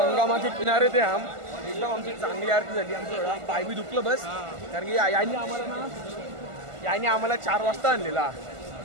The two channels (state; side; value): late; left; 1.5 ms